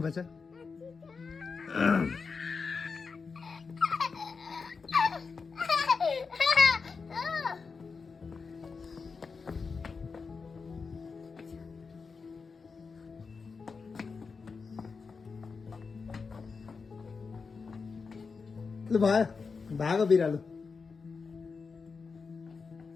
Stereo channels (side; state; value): right; quieter; 5.0 dB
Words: ल भयो भागो बिरालो